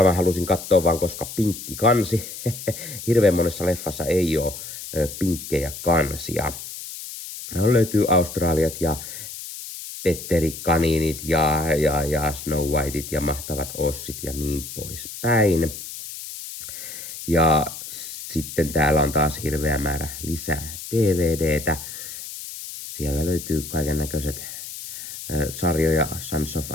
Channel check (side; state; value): left; noise; hiss, 10 dB below the sound